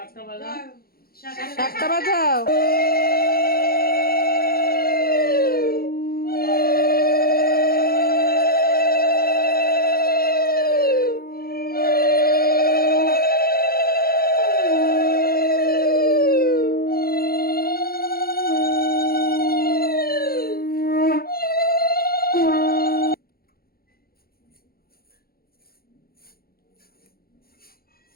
শাকটা বাজা। শাকটা বাজাও।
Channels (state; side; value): late; right; 0.44 ms